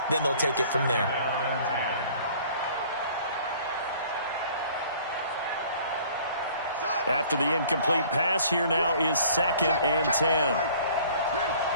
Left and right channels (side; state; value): both; inverted; correlation -0.52